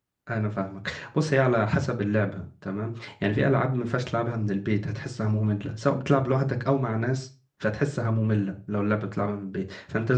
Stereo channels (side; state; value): both; identical; correlation 1.00